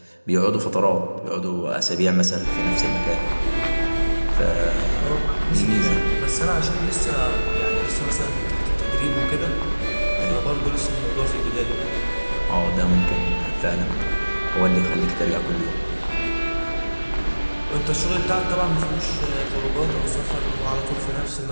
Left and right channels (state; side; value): inverted; both; correlation -1.00